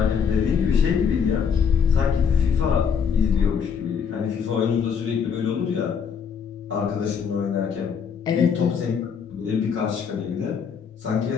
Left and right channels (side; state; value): right; quieter; 6.8 dB